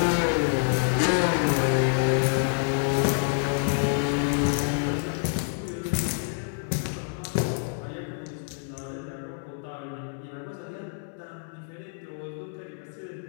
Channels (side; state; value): right; silent; digital silence